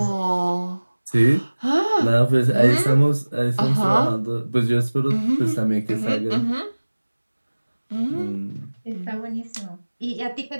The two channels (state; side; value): inverted; both; correlation -1.00